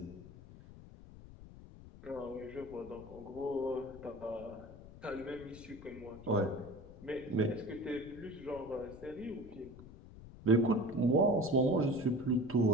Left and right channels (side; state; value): left; noise; rumble, 17 dB below the sound